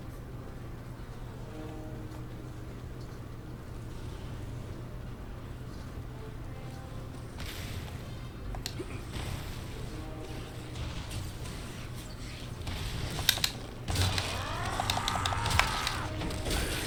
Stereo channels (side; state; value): both; identical; correlation 1.00